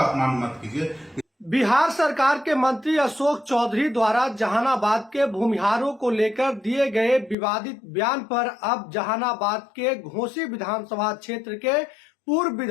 अपमान मत कीजिए। बिहार सरकार के मंत्री अशोक चौधरी द्वारा जहानाबाद के भूमिहारों को लेकर दिए गए विवादित बयान पर अब जहानाबाद के घोसी विधानसभा क्षेत्र के पूर्व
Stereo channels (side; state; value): right; drops out; at 7.4 s